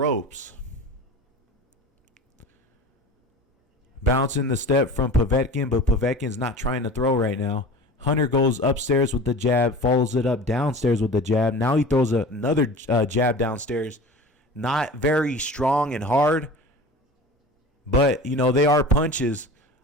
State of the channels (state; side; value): normal; both; correlation 0.37